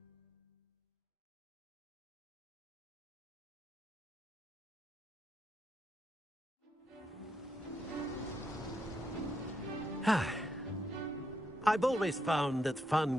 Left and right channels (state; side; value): normal; both; correlation 0.80